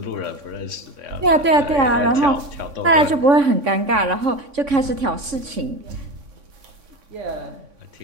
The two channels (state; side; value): late; left; 3.6 ms